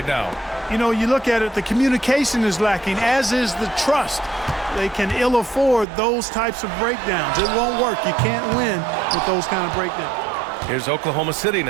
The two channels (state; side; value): drops out; left; at 5.9 s